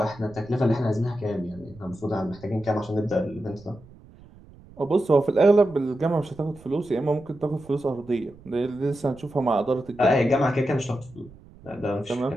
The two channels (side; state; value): right; noise; rumble, 22 dB below the sound